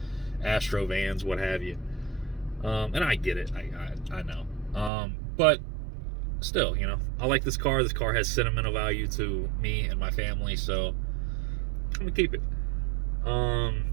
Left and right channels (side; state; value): left; drops out; at 4.9 s